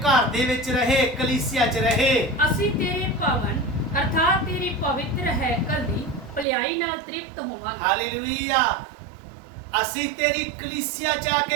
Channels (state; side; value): drops out; left; at 6.5 s